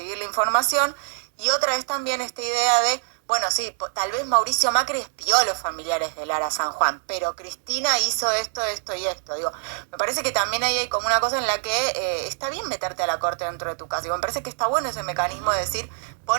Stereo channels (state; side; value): silent; left; 62 dB below the other